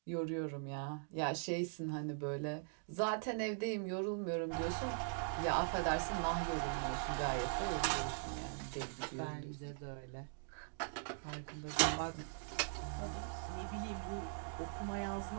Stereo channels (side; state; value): left; silent; digital silence